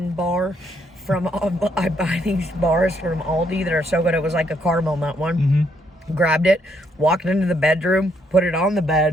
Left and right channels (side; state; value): both; normal; correlation 0.73